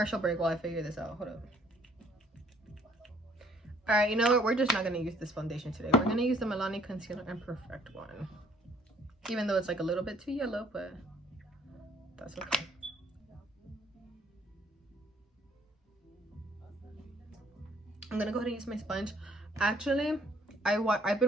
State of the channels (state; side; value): normal; both; correlation 0.62